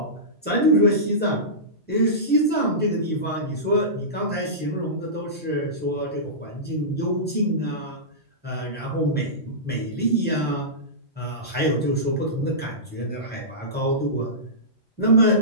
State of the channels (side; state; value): both; normal; correlation -0.19